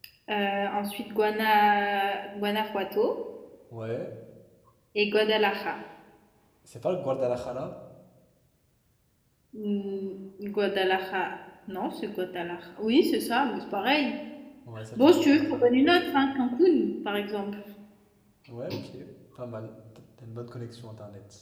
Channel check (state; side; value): identical; both; correlation 1.00